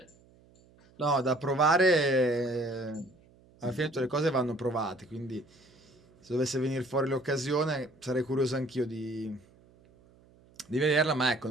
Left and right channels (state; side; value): noise; right; hum, 29 dB below the sound